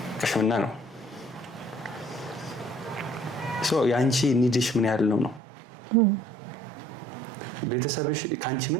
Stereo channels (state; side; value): drops out; left; at 5.4 s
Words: ቅሽምና ነው። የአንቺ ኒድሽ ምን ያህል ነው? ቤተሰብሽ ከአንቺ